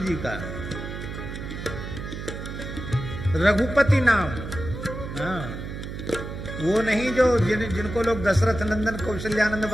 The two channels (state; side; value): noise; right; hum, 8 dB below the sound